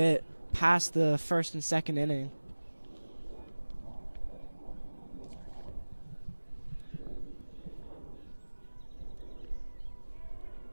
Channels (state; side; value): inverted; both; correlation -1.00